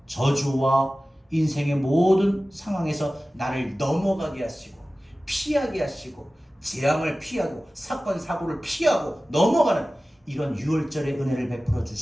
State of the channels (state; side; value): normal; both; correlation 0.96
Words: 저주와 인생의 모든 상황에서 나를 넘어가게 하시고 피하게 하시고 재앙을 피하고 사건 사고를 피하고 넘어가는 이런 유월절의 은혜를 베풀어